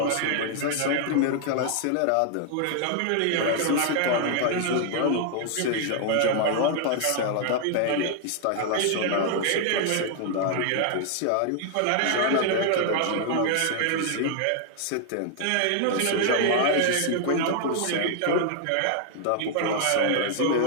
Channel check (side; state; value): both; different; correlation 0.00